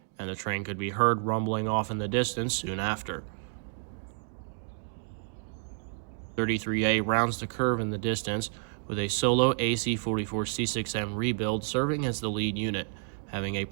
and the train could be heard rumbling off in the distance soon after. 33A rounds the curve in the distance with a solo AC-44C6M rebuild serving as the lead unit, having a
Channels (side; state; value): left; silent; digital silence